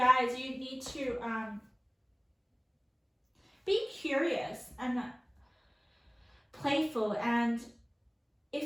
you need to be curious and playful, and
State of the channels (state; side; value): identical; both; correlation 1.00